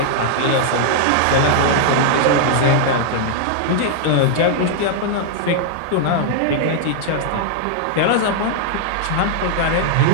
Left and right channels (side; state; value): both; different; correlation -0.01